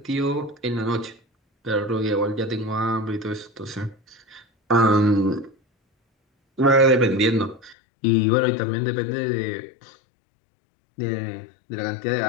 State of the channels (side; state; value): right; drops out; at 7.8 s